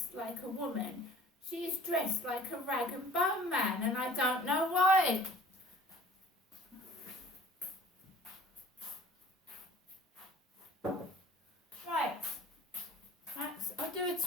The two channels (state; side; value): normal; both; correlation 0.51